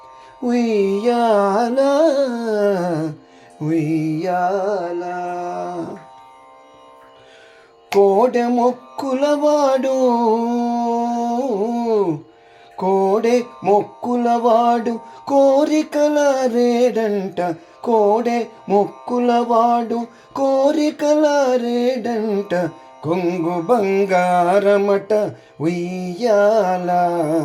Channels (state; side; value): identical; both; correlation 1.00